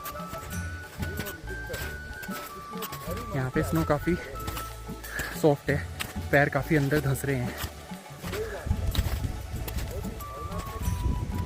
यहाँ पे स्नो काफ़ी सॉफ्ट है, पैर काफ़ी अंदर धंस रहे हैं।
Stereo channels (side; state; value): both; identical; correlation 1.00